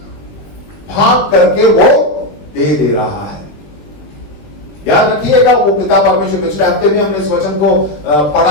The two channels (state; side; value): late; right; 20 ms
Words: भाग करके वो दे रहा है। याद रखिएगा, वो पिता परमेश्वर। पिछले हफ्ते भी हमने इस वचन को